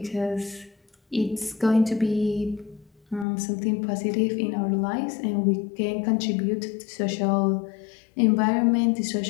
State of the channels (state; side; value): drops out; right; at 3.2 s